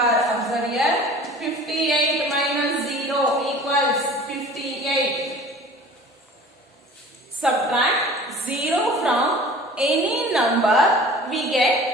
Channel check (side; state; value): both; normal; correlation 0.44